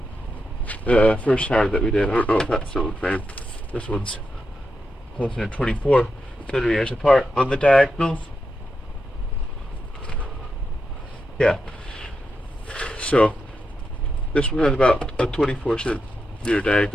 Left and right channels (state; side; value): normal; both; correlation 0.86